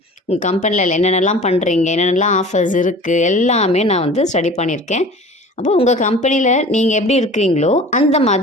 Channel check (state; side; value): normal; both; correlation 0.41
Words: உங்கள் கம்பெனியில் என்னென்னலாம் பண்ணுறீங்க, என்னென்னலாம் ஆஃபர்ஸ் இருக்குது எல்லாமே நான் ஸ்டடி பண்ணியிருக்கேன். அப்போ உங்கள் கம்பெனியில் நீங்கள் எப்படி இருக்கிறீங்களோ அந்த